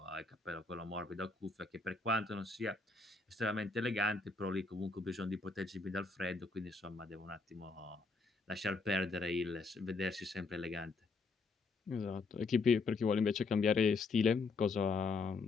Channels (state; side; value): quieter; right; 4.0 dB